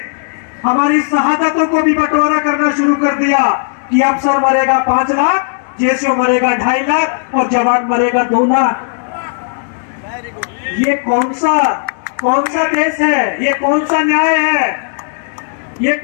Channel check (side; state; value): right; silent; digital silence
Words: हमारी शहादतों को भी बंटवारा करना शुरू कर दिया कि अफसर मरेगा 5 लाख, जेसीओ मरेगा 2.5 लाख और जवान मरेगा 2 लाख। ये कौन सा देश है? ये कौन सा न्याय है? ये